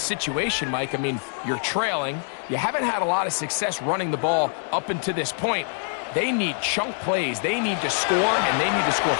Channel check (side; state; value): right; silent; 62 dB below the other